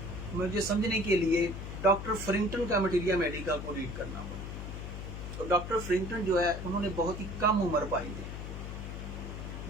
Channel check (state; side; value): noise; left; hum, 7 dB below the sound